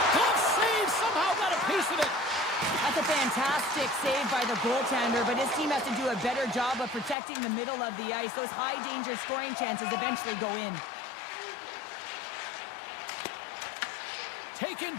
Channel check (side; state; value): right; drops out; at 7.2 s